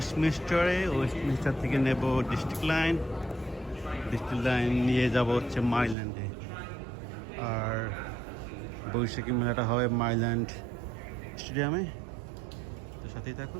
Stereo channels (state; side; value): drops out; left; at 6.0 s